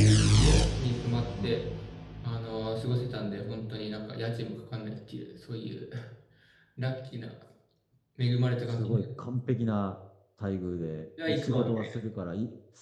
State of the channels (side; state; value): both; identical; correlation 1.00